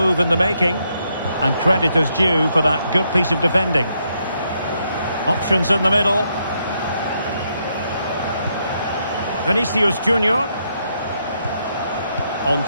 in the making, and credit is due for that good piece of defending. Options in the middle. Vinicius Junior. On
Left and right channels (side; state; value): both; inverted; correlation -0.77